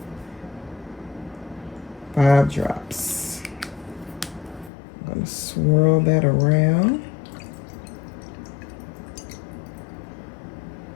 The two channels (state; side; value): drops out; right; at 4.7 s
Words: 5 drops. I'm going to swirl that around.